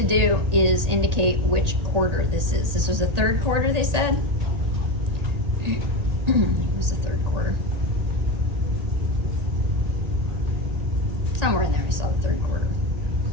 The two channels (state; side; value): late; left; 1.8 ms